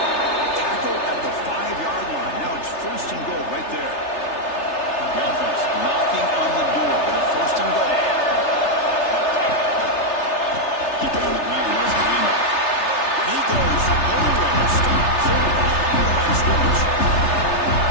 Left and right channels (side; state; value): right; late; 3.3 ms